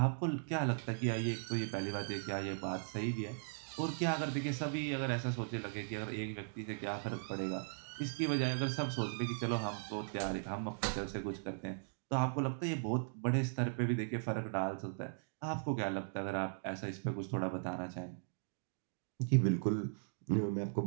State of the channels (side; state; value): left; silent; digital silence